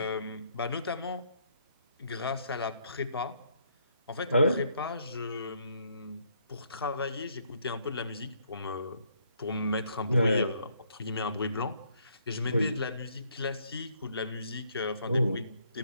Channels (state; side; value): inverted; both; correlation -0.68